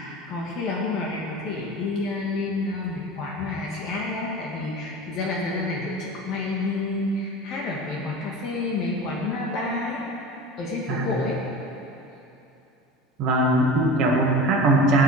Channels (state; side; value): normal; both; correlation 0.34